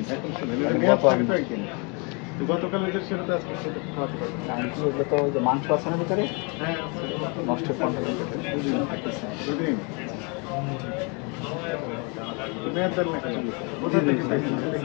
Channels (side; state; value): right; quieter; 32.5 dB